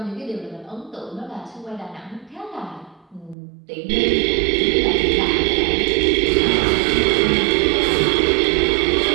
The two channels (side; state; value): left; drops out; at 3.4 s